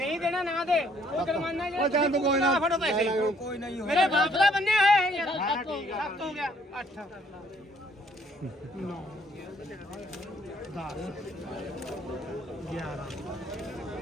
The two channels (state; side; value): normal; both; correlation 0.64